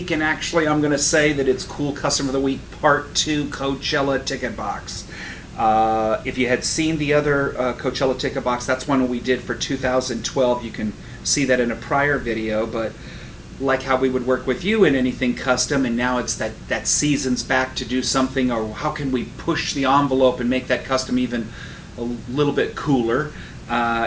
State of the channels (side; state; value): both; identical; correlation 1.00